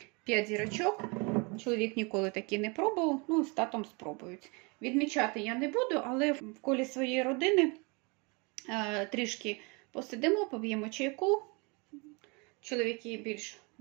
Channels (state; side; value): quieter; left; 30.0 dB